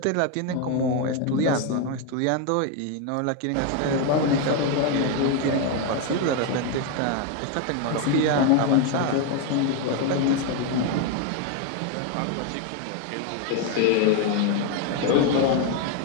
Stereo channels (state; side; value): different; both; correlation 0.01